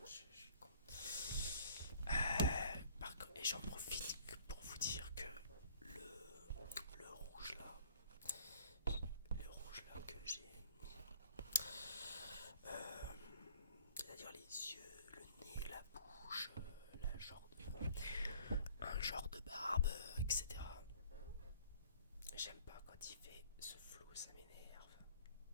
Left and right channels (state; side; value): inverted; both; correlation -0.54